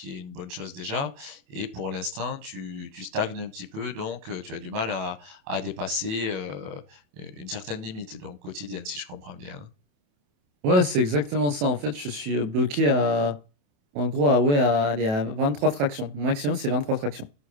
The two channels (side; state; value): left; late; 28 ms